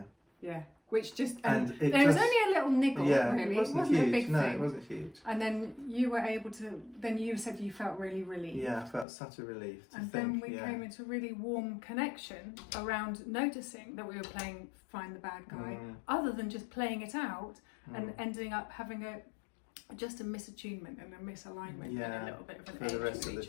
Yeah. Which just, And it there was just- only a little niggle, Yeah, really. it wasn't a huge. big No, thing. it wasn't huge. And then you were able to, then you said you felt really relieved. Yeah, I felt such a relief to And think, then we came into a really warm connection around noticing that we were playing Find the Bad Guy, other than just playing it out and ending up having just a misattunement and a misalignment and a little bit of an for edge the rest with of the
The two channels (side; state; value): right; drops out; at 9.1 s